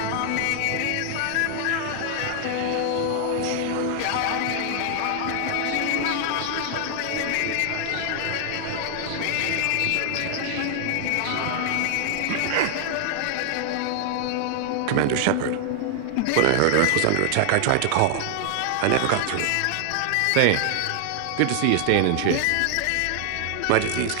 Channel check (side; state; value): both; different; correlation 0.00